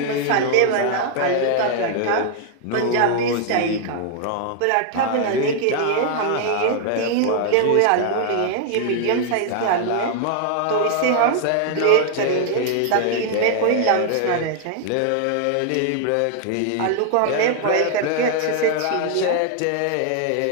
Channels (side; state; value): both; different; correlation 0.00